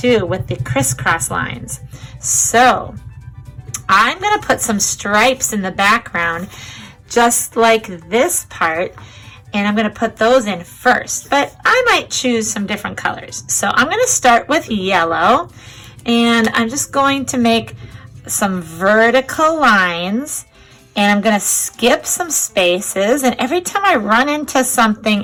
with the crisscross lines. So I'm going to put some stripes in the background just like this part, and I'm going to put those in first, but I might choose some different colors. So I'm going to start with yellow, and I'm just going to make some vertical lines, and I'm going to skip some spaces, and every time I run into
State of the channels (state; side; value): identical; both; correlation 1.00